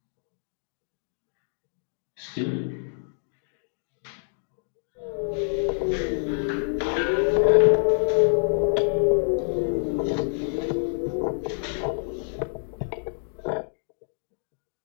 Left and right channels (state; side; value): silent; right; digital silence